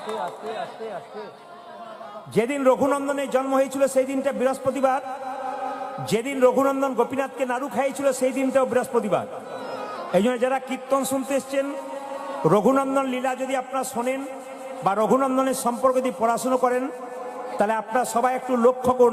আস্তে আস্তে আস্তে। যেদিন রঘুনন্দনের জন্ম হয়েছিল সেই দিনটা বৃহস্পতিবার। যেদিন রঘুনন্দন গোপীনাথকে নাড়ু খাইয়েছিল সেই দিনটাও বৃহস্পতিবার। এই জন্য যারা কীর্তন শুনতে এসছেন, রঘুনন্দন লীলা যদি আপনারা শোনেন বা রঘুনন্দনের সম্পর্কে যদি পড়াশুনো করেন, তাহলে আপনারা সবাই একটু লক্ষ্য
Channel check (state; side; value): identical; both; correlation 1.00